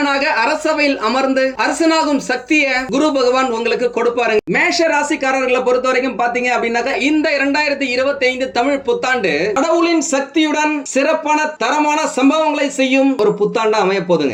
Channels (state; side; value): identical; both; correlation 1.00